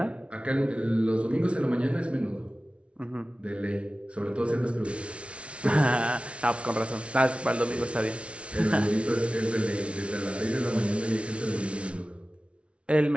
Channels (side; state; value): left; late; 0.061 ms